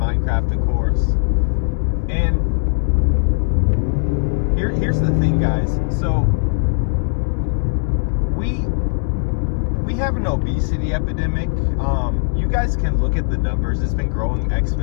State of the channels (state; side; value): silent; right; digital silence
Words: of course. And here's the thing, guys. So we have an obesity epidemic. You guys can look at the numbers. It's been growing